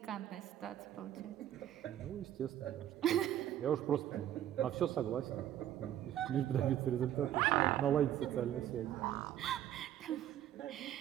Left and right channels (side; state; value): left; quieter; 11.6 dB